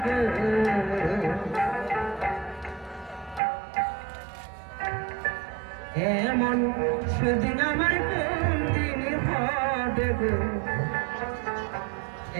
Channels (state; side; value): drops out; left; at 3.4 s